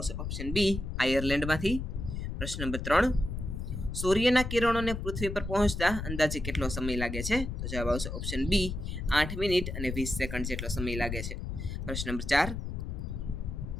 ઓપ્શન બી, આયર્લેન્ડમાંથી. પ્રશ્ન નંબર 3: સૂર્યના કિરણોને પૃથ્વી પર પહોંચતા અંદાજે કેટલો સમય લાગે છે? તો જવાબ આવશે ઓપ્શન બી, 8 મિનિટ અને 20 સેકન્ડ જેટલો સમય લાગે છે. પ્રશ્ન નંબર 4:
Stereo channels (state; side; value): noise; left; rumble, 5 dB below the sound